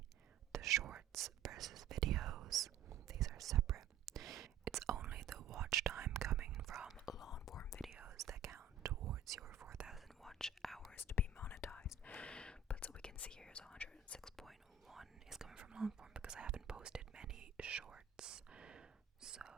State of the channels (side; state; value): left; quieter; 5.8 dB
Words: the shorts versus videos. These are separate. It's only the watch time coming from long form videos that count towards your 4,000 watch hours to be monetized. But so we can see here is 106.1 is coming from long form because I haven't posted many shorts. So